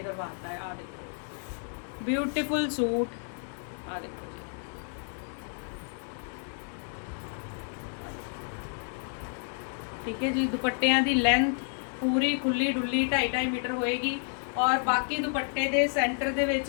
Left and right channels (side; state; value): right; silent; 58 dB below the other